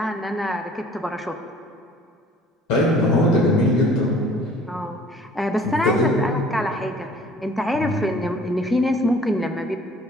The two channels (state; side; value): normal; both; correlation 0.53